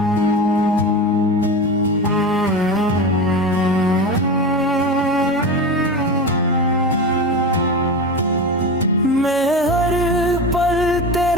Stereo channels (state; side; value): normal; both; correlation 0.24